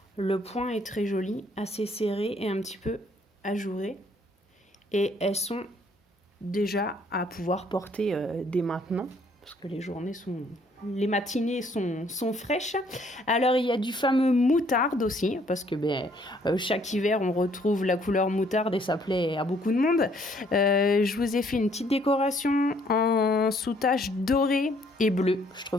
Le point est très joli, assez serré et un petit peu ajouré. Et elles sont déjà à pouvoir porter dès maintenant, parce que les matinées sont fraîches. Alors, il y a du fameux moutarde aussi, parce que chaque hiver, on retrouve la couleur moutarde et ça plaît à beaucoup de monde. Je vous ai fait une petite décoration en sous-tache dorée et bleue. Je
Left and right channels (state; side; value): normal; both; correlation 0.64